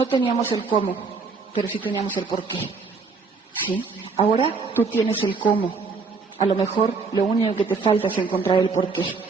teníamos el cómo, pero sí teníamos el por qué, ¿sí? Ahora tú tienes el cómo. A lo mejor lo único que te falta es encontrar el por qué.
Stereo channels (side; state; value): left; quieter; 4.6 dB